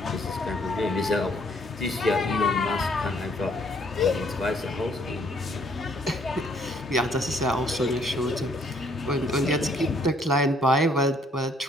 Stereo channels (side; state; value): both; normal; correlation 0.65